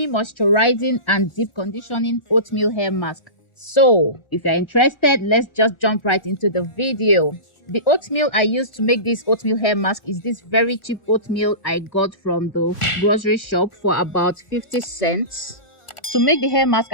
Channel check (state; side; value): late; right; 1.4 ms